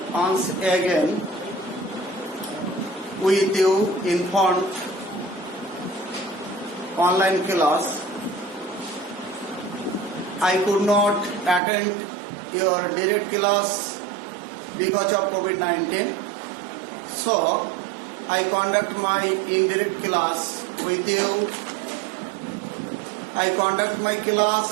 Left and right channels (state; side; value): drops out; left; at 11.6 s